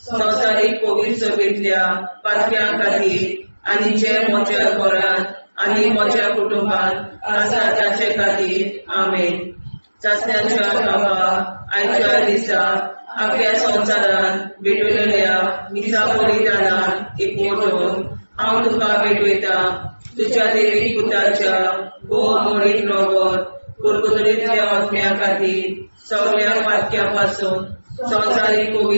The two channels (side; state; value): both; inverted; correlation -1.00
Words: संवसारीक पवित्रतेंतल्या पातक्यां खातीर आनी जे म्हज्या घरान आनी म्हज्या कुटुंबान आसा तांचे खातीर आमेन. सस्त्याच्या बाबा आयच्या दिसा आख्या संवसारान भेटयलोल्या मिसा बलिदाना एकवटून हांव तुका भेटयता तुज्या देवीक पुताच्या मोडीक रगत परगोतरींतल्या आत्म्या खातीर सगळ्या पातक्यां पासून संवसारीक